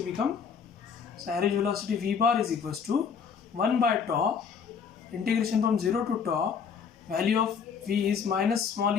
become, so average velocity v bar is equals to 1 by tau integration from 0 to tau, value of v is minus small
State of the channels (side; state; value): right; quieter; 6.5 dB